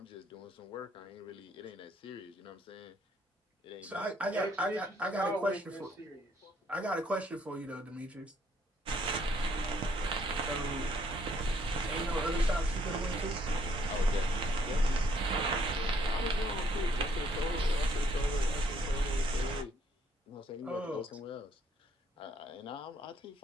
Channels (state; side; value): normal; both; correlation 0.67